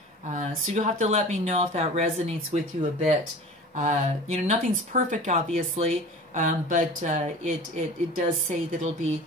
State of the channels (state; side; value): normal; both; correlation 0.38